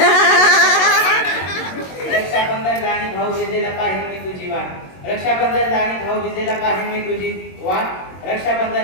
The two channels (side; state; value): right; late; 22 ms